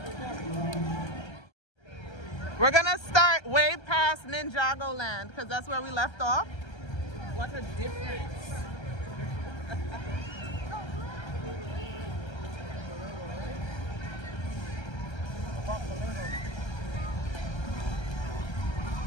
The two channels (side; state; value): right; late; 1.3 ms